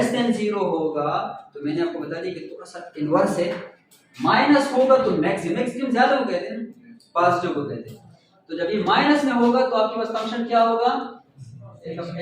देन 0 होगा तो मैंने आपको बता दिया कि थोड़ा सा इनवर्स है। माइनस होगा तो मैक्सिमम ज्यादा को कहते हैं, पॉजिटिव को कहते हैं। तो जब ये माइनस में होगा तो आपके पास फंक्शन क्या होगा, x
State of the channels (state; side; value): identical; both; correlation 1.00